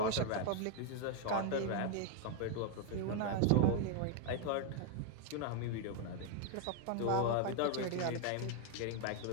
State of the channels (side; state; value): both; different; correlation 0.01